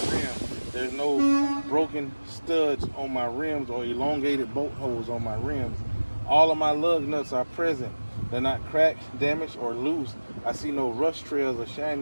There's no broken studs on my rims or elongated bolt holes on my rims. All of my lug nuts are present. They're not cracked, damaged, or loose. I see no rust trails or shiny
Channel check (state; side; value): inverted; both; correlation -1.00